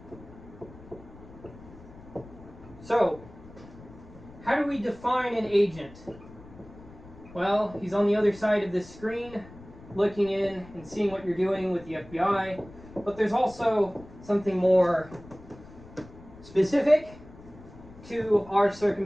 So, how do we define an agent? Well, he's on the other side of this screen, looking in and seeing what you're doing with the FBI. But there's also something more specific to our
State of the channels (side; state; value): left; noise; rumble, 19 dB below the sound